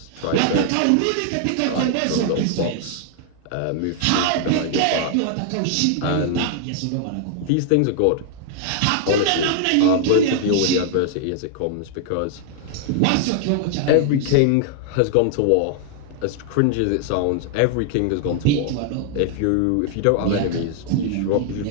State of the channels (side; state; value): both; different; correlation 0.00